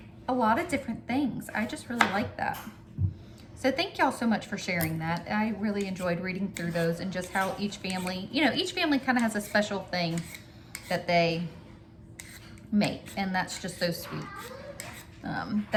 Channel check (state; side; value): identical; both; correlation 1.00